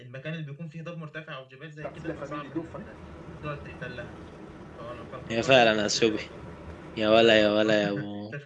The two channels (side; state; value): both; identical; correlation 1.00